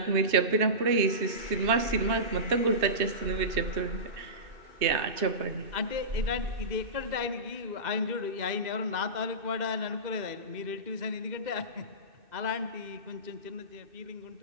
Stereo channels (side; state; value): left; late; 2.6 ms